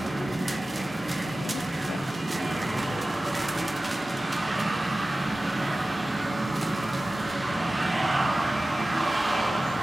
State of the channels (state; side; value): normal; both; correlation 0.96